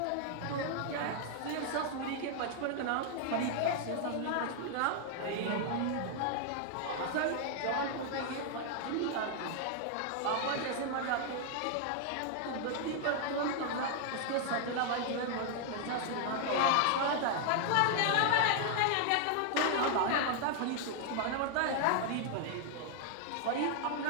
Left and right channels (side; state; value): both; different; correlation 0.00